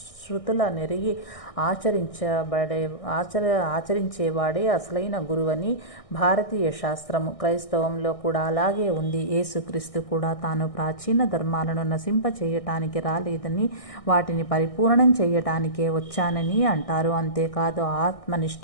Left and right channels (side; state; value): right; late; 1.6 ms